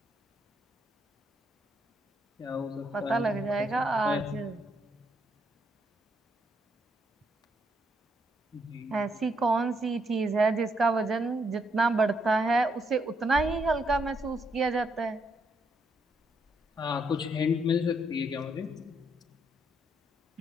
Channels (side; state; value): both; normal; correlation 0.76